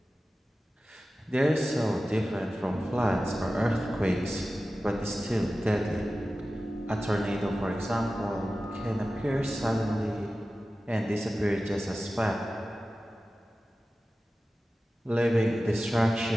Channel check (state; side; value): normal; both; correlation 0.95